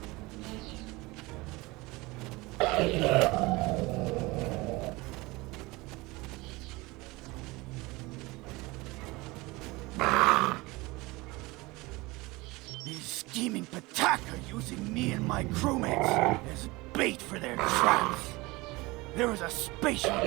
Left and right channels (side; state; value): left; quieter; 22.5 dB